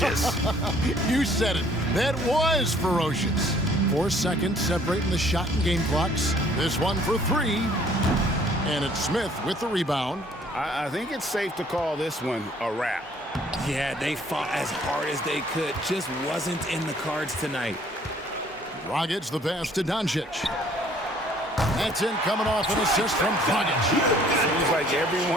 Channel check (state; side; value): normal; both; correlation 0.59